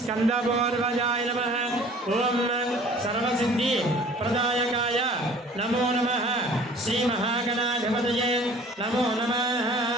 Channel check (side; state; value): both; normal; correlation 0.49